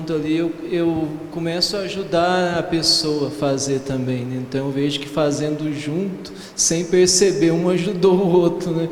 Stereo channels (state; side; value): identical; both; correlation 1.00